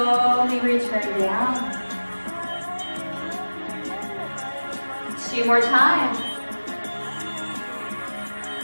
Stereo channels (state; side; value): inverted; both; correlation -1.00